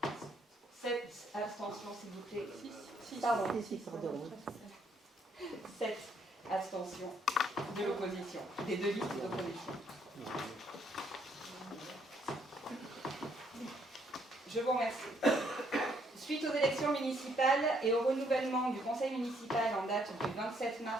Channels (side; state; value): both; normal; correlation 0.69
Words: 7 abstentions, s'il vous plaît. 7 abstentions de l'opposition, des deux listes d'opposition. Je vous remercie. Suite aux élections municipales et au renouvellement du conseil municipal en date du 27